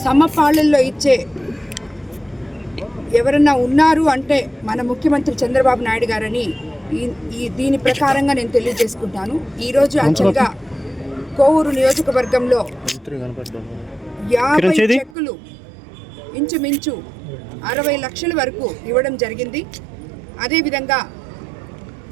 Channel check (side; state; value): left; drops out; at 15.2 s